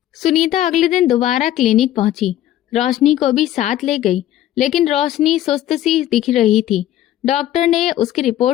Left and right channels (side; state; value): right; quieter; 12.9 dB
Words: सुनीता अगले दिन दोबारा क्लिनिक पहुंची। रोशनी को भी साथ ले गई, लेकिन रोशनी सुस्त सी दिख रही थी। डॉक्टर ने उसकी